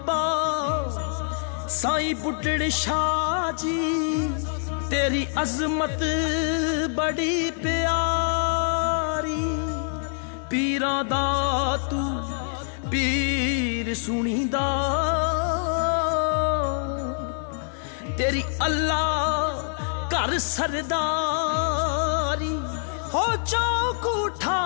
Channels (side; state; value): right; silent; digital silence